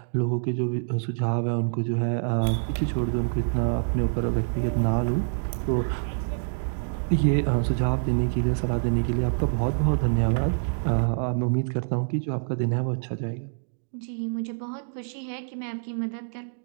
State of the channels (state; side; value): silent; left; digital silence